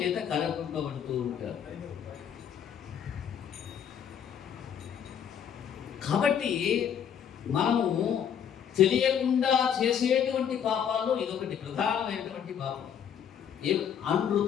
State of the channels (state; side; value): quieter; right; 8.5 dB